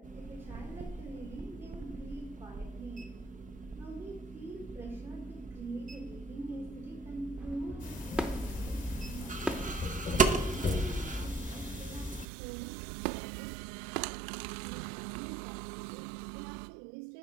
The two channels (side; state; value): left; drops out; at 12.2 s